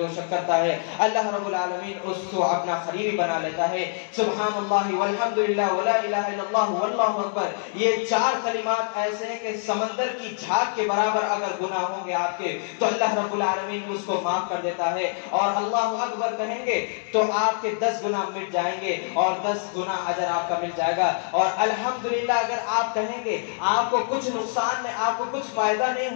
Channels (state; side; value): silent; right; digital silence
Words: شخص کرتا ہے اللہ رب العالمین اس کو اپنا قریبی بنا لیتا ہے. سبحان اللہ والحمد للہ ولا الہ الا اللہ واللہ اکبر, یہ 4 کلمات ایسے ہیں کہ سمندر کی جھاگ کے برابر اگر گناہ ہوں گے آپ کے تو اللہ رب العالمین اس کو معاف کر دیتا ہے. اور اللہ اکبر کہیں گے تو آپ کے 10 گناہ مٹ جائیں گے اور 10 گنا اجر آپ کا مل جائے گا. اور الحمدللہ اگر آپ کہیں گے آپ کو کچھ نقصان میں آپ کو کچھ فائدہ